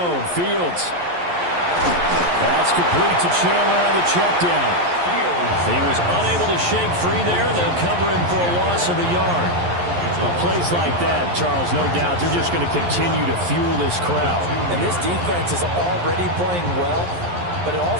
Fields. That's complete to Chandler on the check down. He was unable to shake free there. They'll cover him for a loss of a yard. Well, plays like that, Charles, no doubt, they're just going to continue to fuel this crowd. And this defense is already playing well, but it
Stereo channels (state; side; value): late; left; 11 ms